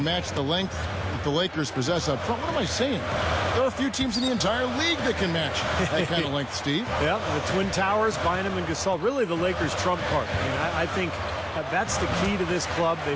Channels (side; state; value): both; identical; correlation 1.00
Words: match the length that the Lakers possess up front. What am I saying? There are a few teams in the entire league that can match that kind of length, Steve. Yeah, the Twin Towers, Bynum and Gasol, really the Lakers' trump card. I think that's the key to this club. They've